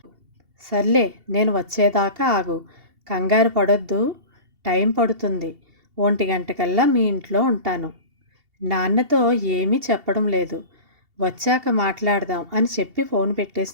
సర్లే, నేను వచ్చేదాకా ఆగు. కంగారు పడొద్దు. టైం పడుతుంది. 1 గంటకల్లా మీ ఇంట్లో ఉంటాను. నాన్నతో ఏమీ చెప్పడం లేదు. వచ్చాక మాట్లాడదాం అని చెప్పి ఫోన్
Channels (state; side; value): late; left; 2.8 ms